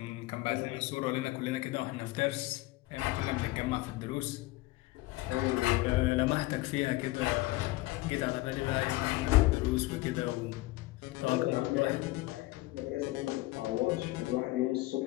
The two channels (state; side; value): quieter; right; 19.6 dB